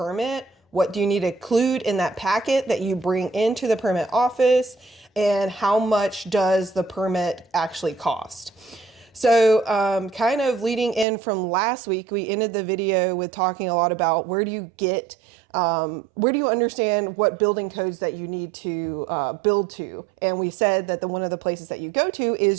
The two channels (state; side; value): drops out; left; at 11.1 s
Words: What do you need to include in that packet that you bring into the permit office? And how much does the permit actually cost? So kind of leading in from last week, we ended the video with talking a lot about where do you understand what building codes that you need to build to. And we said that one of the places that you go to